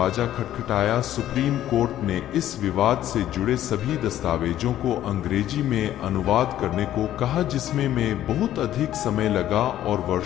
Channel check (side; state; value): right; quieter; 12.4 dB